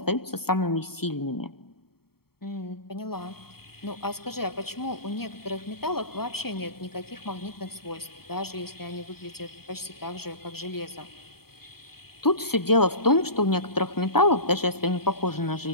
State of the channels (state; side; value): late; right; 0.95 ms